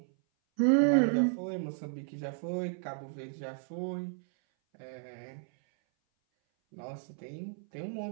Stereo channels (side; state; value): left; silent; 56 dB below the other